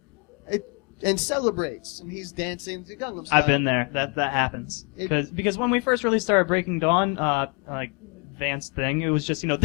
and celebrates, and he's dancing to Gangnam Style. I've been there. That happens. Because when we first really started Breaking Dawn, like Vance thing, it was just,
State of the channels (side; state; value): right; quieter; 34.8 dB